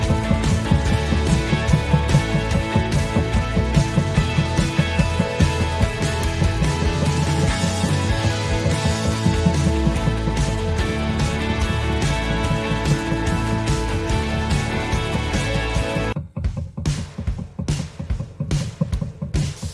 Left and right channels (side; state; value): both; identical; correlation 1.00